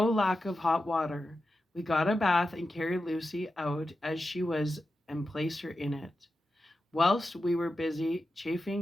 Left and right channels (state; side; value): normal; both; correlation 0.91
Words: lack of hot water. We got a bath and carried Lucy out as she was and placed her in it. Whilst we were busy